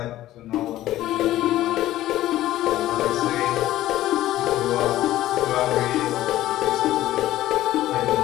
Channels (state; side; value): quieter; right; 14.6 dB